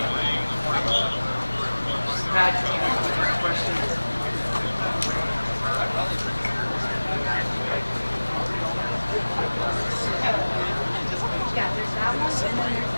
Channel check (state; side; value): inverted; both; correlation -1.00